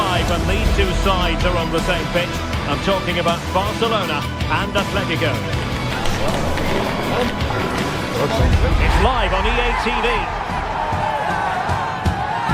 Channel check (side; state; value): both; identical; correlation 1.00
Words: when these two sides are on the same pitch. I'm talking about Barcelona and Atletico. It's live on EA TV.